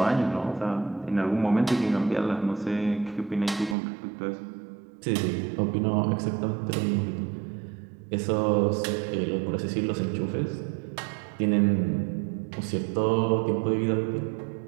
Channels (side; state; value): left; drops out; at 3.8 s